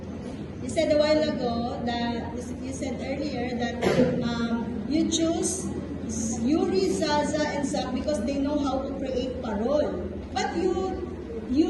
You said a while ago that, you said earlier that you choose Yuri, Zaza, and Zach because they know how to create parole. But you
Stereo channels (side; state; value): both; identical; correlation 1.00